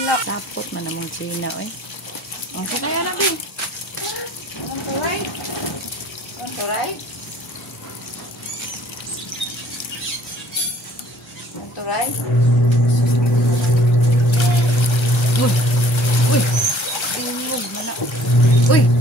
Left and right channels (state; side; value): normal; both; correlation 0.55